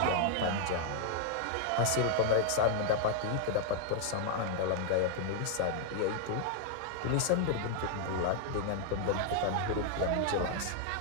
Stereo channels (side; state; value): both; different; correlation 0.00